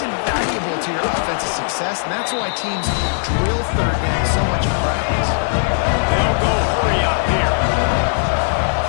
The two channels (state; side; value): silent; right; 63 dB below the other